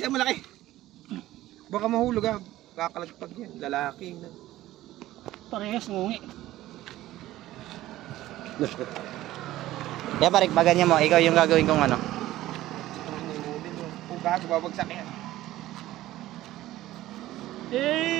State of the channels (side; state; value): left; quieter; 15.3 dB